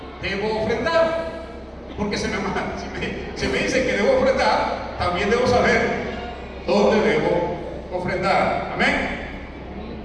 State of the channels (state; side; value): identical; both; correlation 1.00